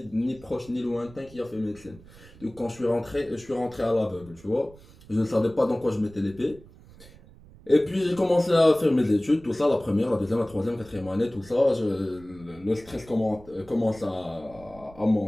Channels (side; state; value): right; noise; rumble, 22 dB below the sound